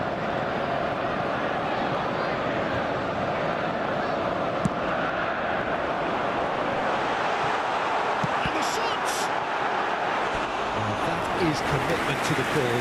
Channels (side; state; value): both; identical; correlation 1.00